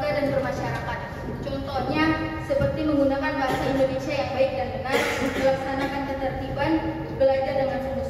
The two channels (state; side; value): identical; both; correlation 1.00